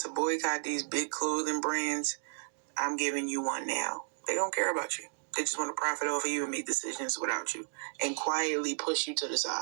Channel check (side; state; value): left; silent; digital silence